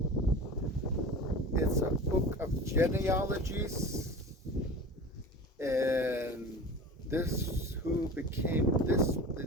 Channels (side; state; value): both; normal; correlation 0.36